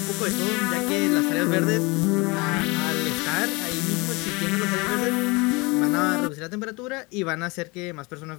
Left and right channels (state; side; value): quieter; right; 26.1 dB